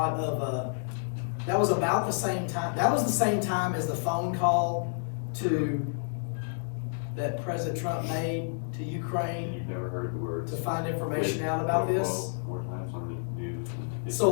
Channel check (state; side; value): silent; right; digital silence